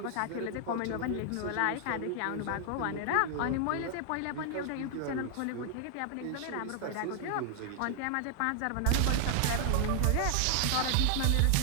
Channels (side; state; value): both; different; correlation 0.00